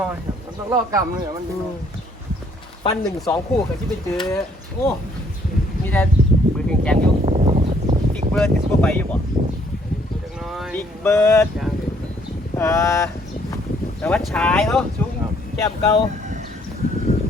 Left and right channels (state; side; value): normal; both; correlation 0.65